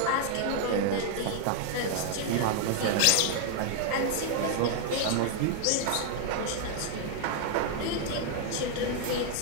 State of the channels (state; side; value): different; both; correlation 0.00